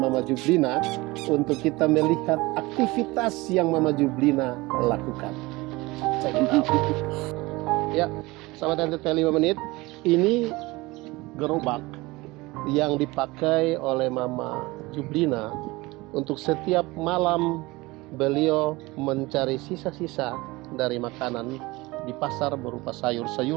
Mama Jublina untuk kita melihat aktivitas yang Mama Jublina lakukan. Check it out. Ya, sahabat NTT 5 menit, ini gerobak yang dipakai oleh Mama Jublina untuk setiap malam beliau mencari sisa-sisa dari makanan di pasar berupa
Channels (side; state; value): left; quieter; 21.8 dB